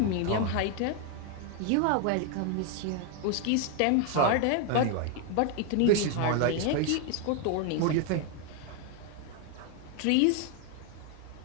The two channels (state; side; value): different; both; correlation 0.01